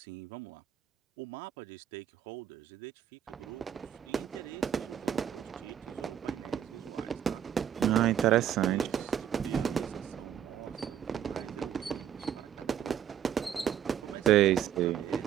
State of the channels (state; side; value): quieter; left; 9.6 dB